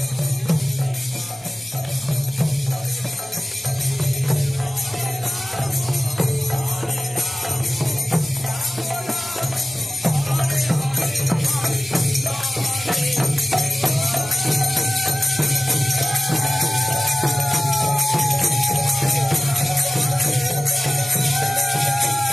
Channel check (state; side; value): normal; both; correlation 0.96